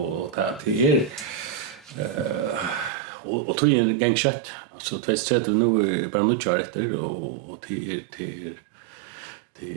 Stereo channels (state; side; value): drops out; left; at 2.9 s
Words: det är och tog en gång kött alltså 2030 nu bara nu kör efter och det